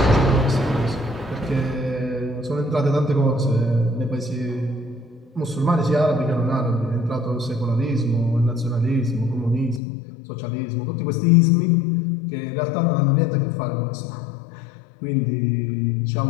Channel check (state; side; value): drops out; right; at 9.8 s